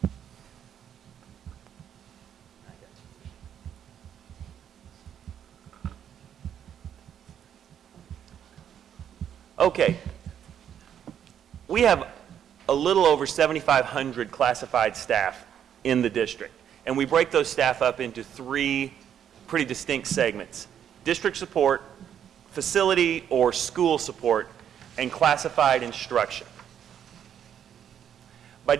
Okay. We have a little over 7,500 classified staff in the district, and we break those staff up into three pretty distinct segments: district support, facility or school support, and classified instruction. By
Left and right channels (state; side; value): quieter; left; 9.2 dB